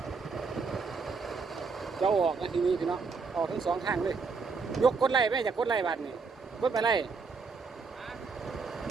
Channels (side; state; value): left; quieter; 4.8 dB